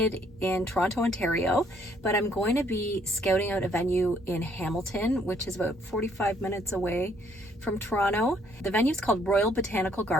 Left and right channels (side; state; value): both; normal; correlation 0.66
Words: in Toronto, Ontario, but I'm going to be scouting out a venue in Hamilton, which is about 45 minutes away from Toronto. The venue is called Royal Botanical